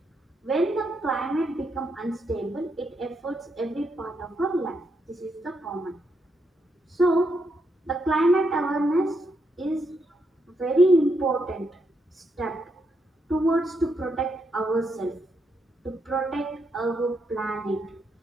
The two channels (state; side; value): normal; both; correlation 0.80